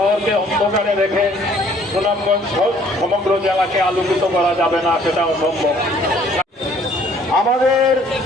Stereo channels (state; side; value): normal; both; correlation 0.59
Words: অন্ধকারে রেখে সুনামগঞ্জ সমগ্র জেলাকে আলোকিত করা যাবে না, সেটা অসম্ভব। আমাদের